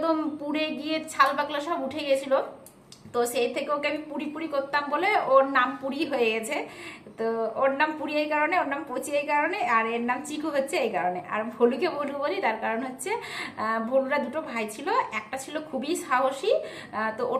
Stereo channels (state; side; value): identical; both; correlation 1.00